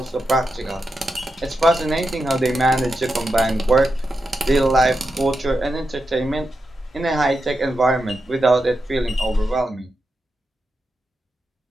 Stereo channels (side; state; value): both; normal; correlation 0.87